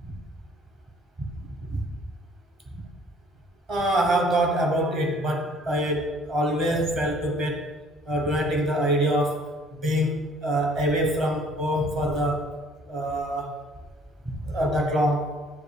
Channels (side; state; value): both; normal; correlation 0.57